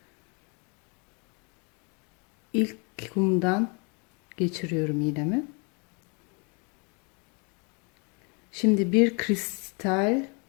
ilk kumdan geçiriyorum iğnemi. Şimdi bir kristal,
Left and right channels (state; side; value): quieter; right; 33.7 dB